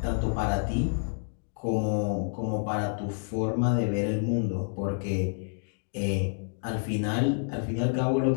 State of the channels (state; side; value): silent; right; digital silence